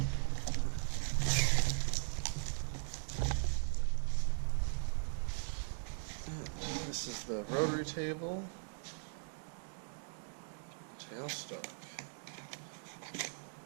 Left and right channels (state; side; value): silent; left; digital silence